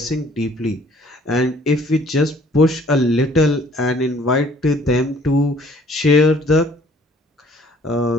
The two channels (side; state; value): both; normal; correlation 0.58